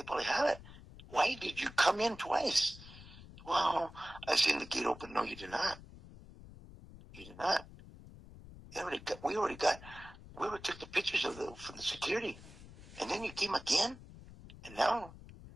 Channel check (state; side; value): noise; left; rumble, 17 dB below the sound